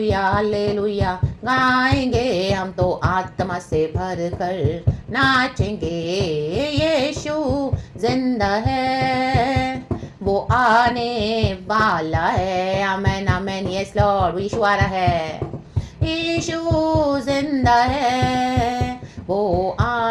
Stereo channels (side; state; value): both; identical; correlation 1.00